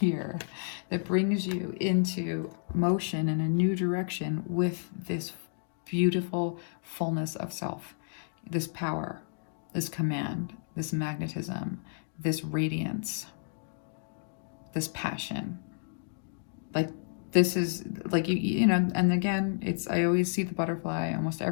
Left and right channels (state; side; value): silent; right; digital silence